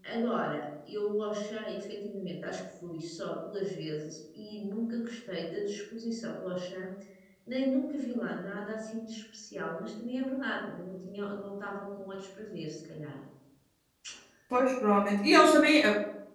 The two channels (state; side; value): identical; both; correlation 1.00